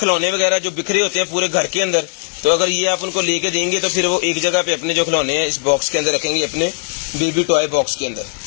वगैरह जो बिखरे होते हैं पूरे घर के अंदर, तो अगर ये आप उनको लेके देंगे तो फिर वो एक जगह पे अपने जो खिलौने हैं इस बॉक्स के अंदर रखेंगे, अपने बेबी टॉय बॉक्स के अंदर।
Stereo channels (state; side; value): silent; right; 59 dB below the other